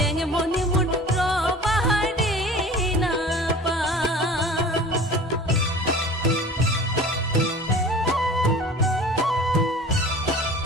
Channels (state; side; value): normal; both; correlation 0.41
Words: মনে মোর রবারে না পা